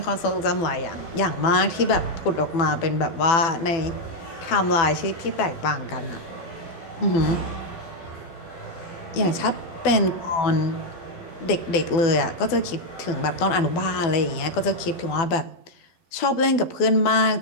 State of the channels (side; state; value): right; late; 12 ms